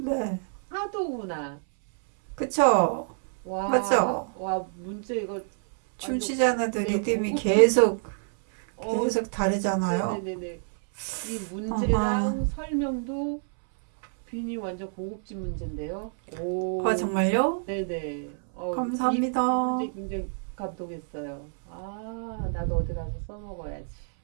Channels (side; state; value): left; silent; 60 dB below the other